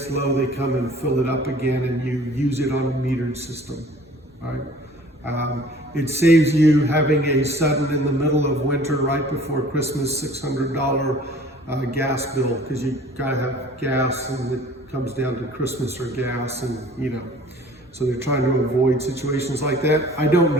low they come and fill it up again and you use it on a metered system. All right? It saves you having a sudden, in the middle of winter, right before Christmas, $600 gas bill, because you gotta have gas and it comes down to Christmas or gas, and so they're trying to avoid situations like that. I don't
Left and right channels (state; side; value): normal; both; correlation 0.50